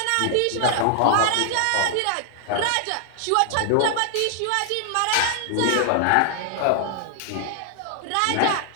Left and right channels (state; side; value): different; both; correlation 0.00